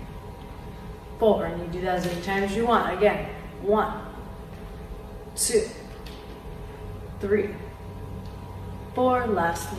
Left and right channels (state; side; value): identical; both; correlation 1.00